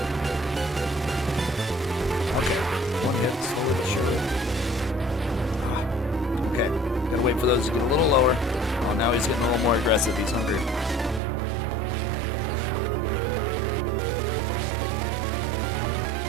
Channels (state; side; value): drops out; left; at 11.2 s